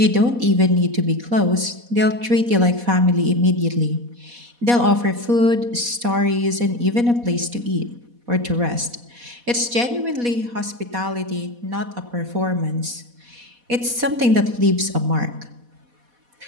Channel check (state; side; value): late; left; 4.1 ms